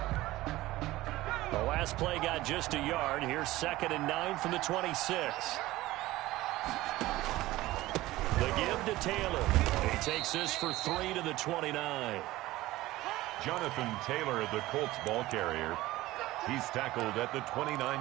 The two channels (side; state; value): left; quieter; 17.5 dB